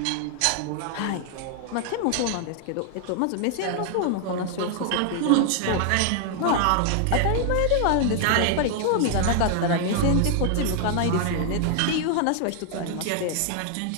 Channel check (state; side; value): different; both; correlation 0.00